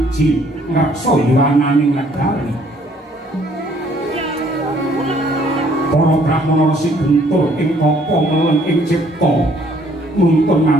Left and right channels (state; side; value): normal; both; correlation 0.62